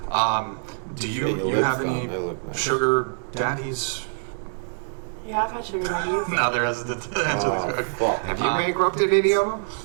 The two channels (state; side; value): silent; left; digital silence